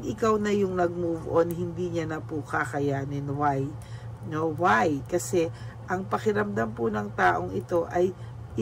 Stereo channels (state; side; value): identical; both; correlation 1.00